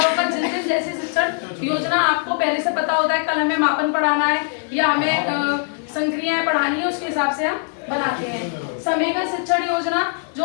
होगा, जिन दिन जैसी शिक्षण योजना आपको पहले से पता होता है, कल हमें मापन पढ़ाना है या हमें संक्रियाएं पढ़ानी है, उसके हिसाब से हम बनाते हैं। समेकन शिक्षण योजना जो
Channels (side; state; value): right; silent; 59 dB below the other